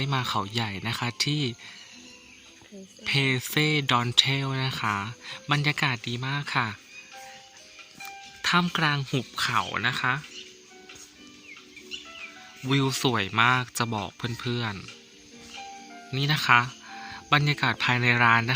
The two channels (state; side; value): identical; both; correlation 1.00